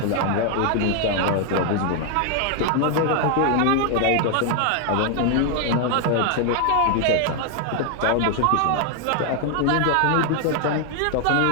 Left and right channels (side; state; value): both; different; correlation 0.00